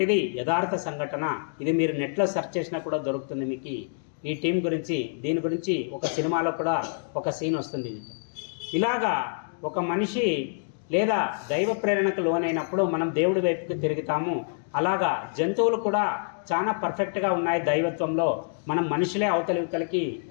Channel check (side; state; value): right; silent; digital silence